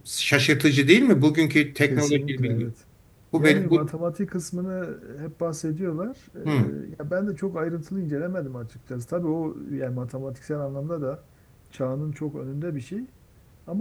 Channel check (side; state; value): both; identical; correlation 1.00